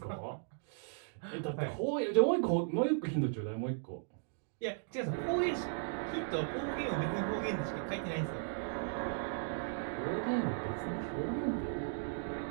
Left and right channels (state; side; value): silent; left; digital silence